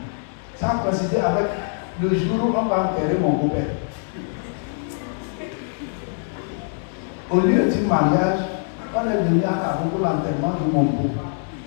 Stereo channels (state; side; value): silent; right; 63 dB below the other